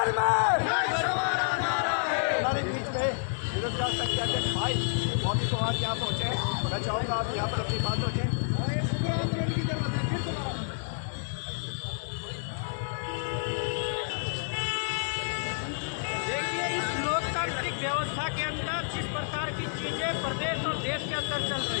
में हमारे बीच में विरोध संख्या के भाई मौके को आज यहाँ पहुँचे। मैं चाहूँगा आप यहाँ पर अपनी बात रखें। देखिए, इस लोकतांत्रिक व्यवस्था के अंदर जिस प्रकार की चीजें प्रदेश और देश के अंदर चल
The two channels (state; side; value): silent; right; digital silence